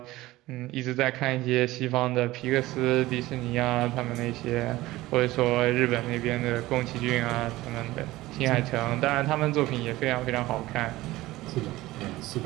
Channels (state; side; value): quieter; left; 17.9 dB